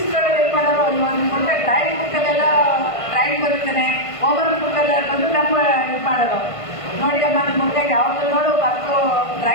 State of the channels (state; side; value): late; right; 1.5 ms